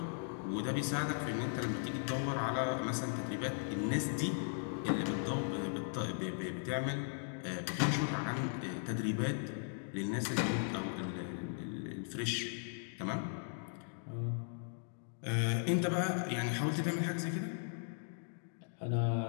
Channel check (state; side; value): silent; right; digital silence